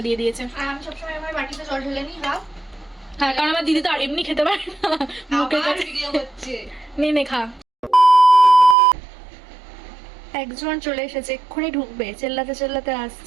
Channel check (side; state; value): left; drops out; at 8.8 s